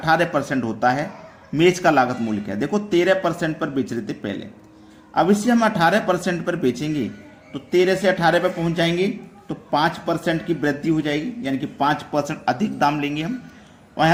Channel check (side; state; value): both; identical; correlation 1.00